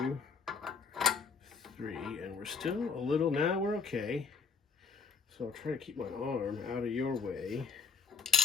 3, and we're still a little, now we're okay. So I'll try to keep my arm out of your way.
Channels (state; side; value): quieter; right; 5.3 dB